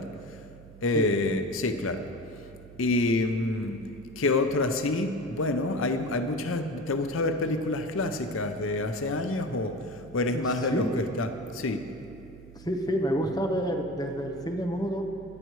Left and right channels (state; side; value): noise; right; hum, 19 dB below the sound